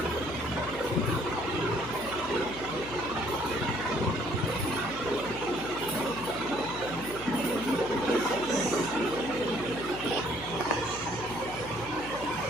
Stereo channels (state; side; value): noise; left; hum, 14 dB below the sound